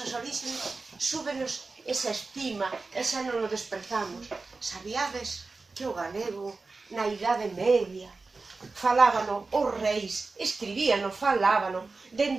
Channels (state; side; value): quieter; left; 3.9 dB